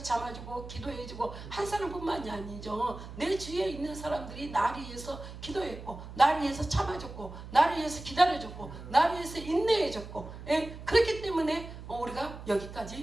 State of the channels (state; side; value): noise; right; hum, 12 dB below the sound